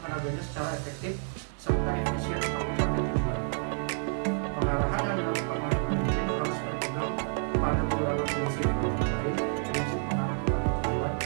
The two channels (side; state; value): left; silent; 55 dB below the other